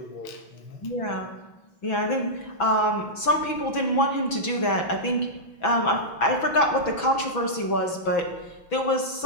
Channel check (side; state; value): right; late; 6.0 ms